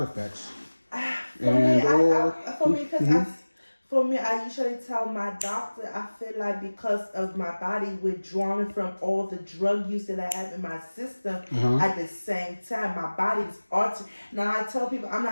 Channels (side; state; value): both; inverted; correlation -1.00